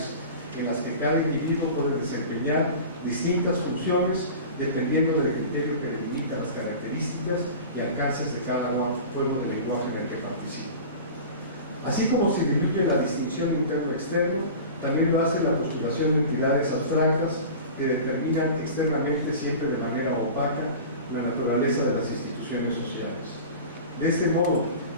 en las que cada individuo puede desempeñar distintas funciones dependiendo del criterio que delimita las características y alcances de cada juego de lenguaje en el que participa. Así como se diluye la distinción interno-externo, también lo hace la postulación de entidades abstractas que determinan externamente siempre de manera opaca la naturaleza de las instituciones sociales. De este modo,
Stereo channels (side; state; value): both; inverted; correlation -0.36